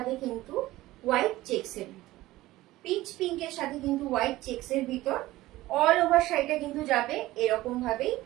কিন্তু হোয়াইট চেক্সের ভিতর। পিচ পিঙ্কের সাথে কিন্তু হোয়াইট চেক্সের ভিতর অল ওভার শাড়িটা কিন্তু যাবে এরকম ভাবেই।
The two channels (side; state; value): left; quieter; 17.2 dB